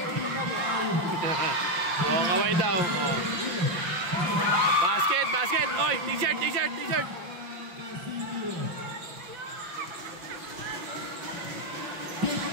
Oh, kaway daw. Oh. Basket, basket. Oy, t-shirt, t-shirt, t-shirt.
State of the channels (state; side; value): late; left; 5.8 ms